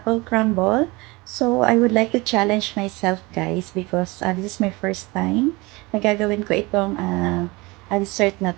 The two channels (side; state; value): left; quieter; 24.0 dB